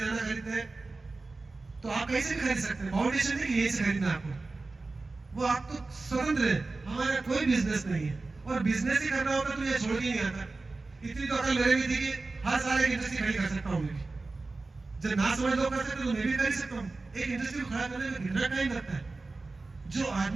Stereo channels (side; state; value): left; quieter; 3.5 dB